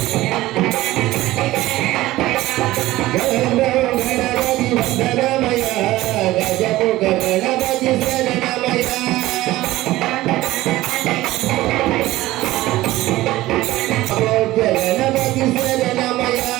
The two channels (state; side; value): quieter; left; 17.0 dB